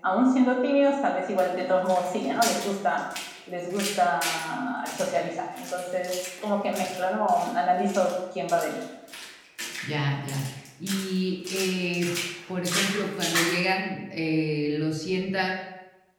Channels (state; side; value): identical; both; correlation 1.00